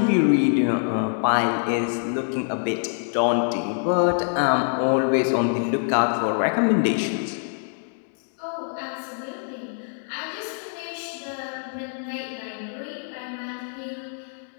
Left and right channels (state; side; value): silent; right; 62 dB below the other